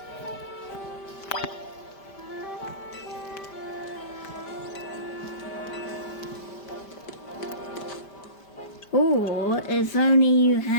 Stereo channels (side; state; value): right; late; 5.1 ms